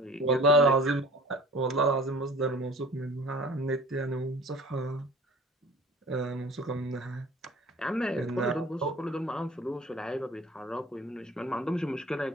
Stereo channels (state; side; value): normal; both; correlation 0.45